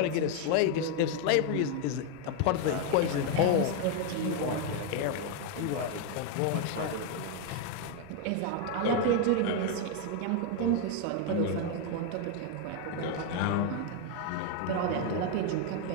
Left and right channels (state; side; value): different; both; correlation 0.01